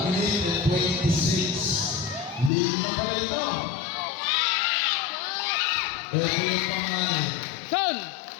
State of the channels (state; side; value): drops out; right; at 2.5 s